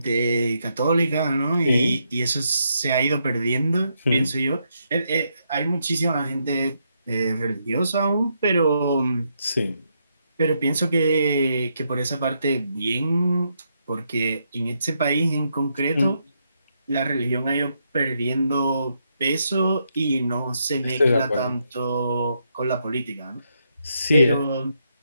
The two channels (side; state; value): both; inverted; correlation -0.79